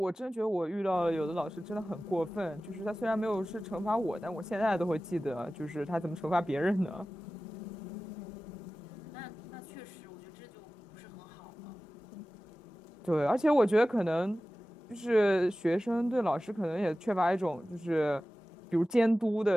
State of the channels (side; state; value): both; normal; correlation 0.96